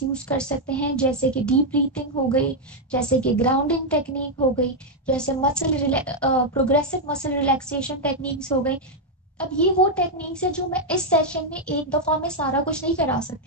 यूज कर सकते हैं, जैसे कि डीप ब्रीथिंग हो गई, जैसे कि ग्राउंडिंग टेक्निक हो गई, जैसे प्रोग्रेसिव मसल रिलैक्सेशन टेक्निक्स हो गई। अब ये वो टेक्निक्स है जो मैं इस सेशन में एक दफा में सारा कुछ नहीं करा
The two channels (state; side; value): normal; both; correlation 0.00